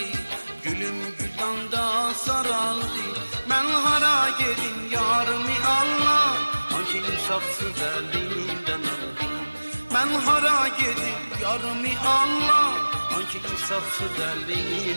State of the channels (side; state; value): both; inverted; correlation -1.00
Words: gülüm güldan da saraldı. Ben hara gedim yarımı Allah, hangi insafsız elinden aldı. Ben hara gedim yarımı Allah, hangi insafsız